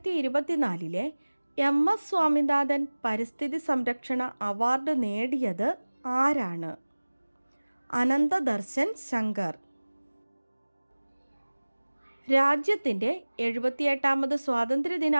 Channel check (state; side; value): inverted; both; correlation -1.00